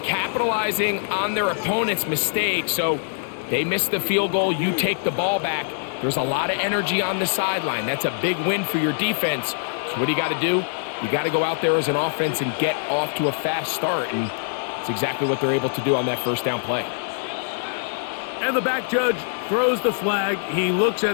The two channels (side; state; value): right; silent; digital silence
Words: capitalizing on their opponent's mistake, so they miss the field goal, you take the ball back. There's a lot of energy on the sideline. That's a big win for your defense. So what do you got to do? You got to go out there as an offense and get off to a fast start, and it's exactly what they're able to do on that first down play. And the back judge throws the flag. He looks